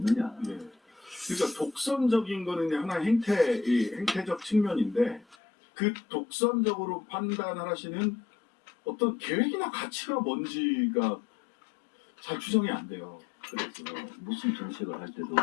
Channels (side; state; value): right; drops out; at 5.4 s